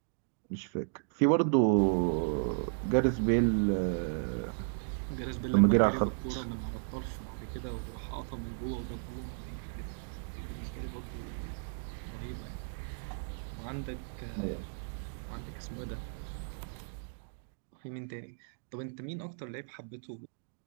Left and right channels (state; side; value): silent; left; digital silence